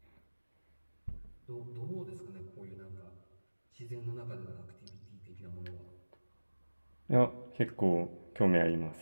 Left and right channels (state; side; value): inverted; both; correlation -1.00